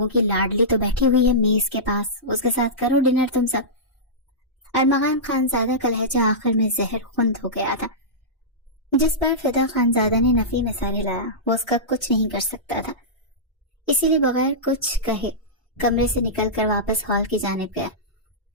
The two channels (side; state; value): both; normal; correlation -0.16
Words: کی لاڈلی تو بیٹھی ہوئی ہے میز کے پاس، اس کے ساتھ کرو ڈنر تم سب۔ ارمغان خانزادہ کا لہجہ آخر میں زہر خوند ہو گیا تھا۔ جس پر فدا خانزادہ نے نفی میں سر ہلایا، وہ اس کا کچھ نہیں کر سکتا تھا، اسی لیے بغیر کچھ کہے کمرے سے نکل کر واپس ہال کی جانب گیا،